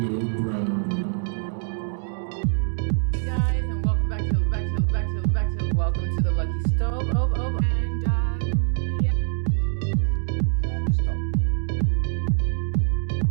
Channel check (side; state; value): left; silent; digital silence